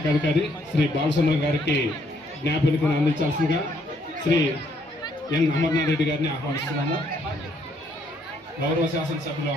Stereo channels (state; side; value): normal; both; correlation 0.69